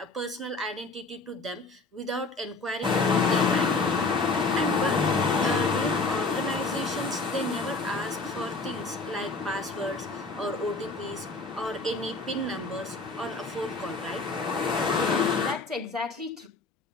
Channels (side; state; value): right; quieter; 3.5 dB